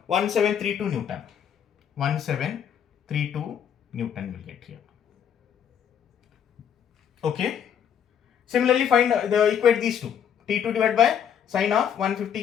1732 Newton. 1732 Newton will get here. Okay. Similarly, find equate these two. T2 divided by sine of 150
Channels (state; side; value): quieter; right; 8.6 dB